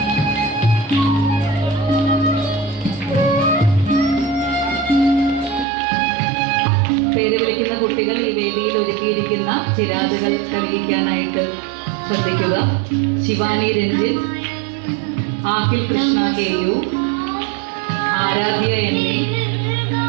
പേര് വിളിക്കുന്ന കുട്ടികൾ ഈ വേദിയിൽ ഒരുക്കിയിരിക്കുന്ന ചിരാതുകൾ തെളിയിക്കാനായിട്ട് ശ്രദ്ധിക്കുക. ശിവാനി രഞ്ജിൻ, ആഖിൽ കൃഷ്ണ കെ.യു, ആരാധ്യ എന്നെ,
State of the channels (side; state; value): left; drops out; at 5.7 s